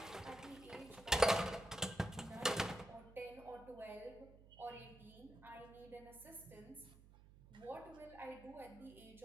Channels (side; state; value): right; noise; hum, 20 dB below the sound